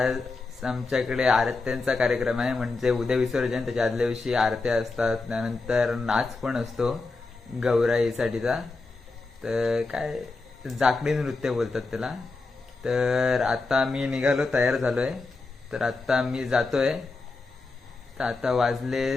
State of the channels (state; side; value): quieter; right; 3.7 dB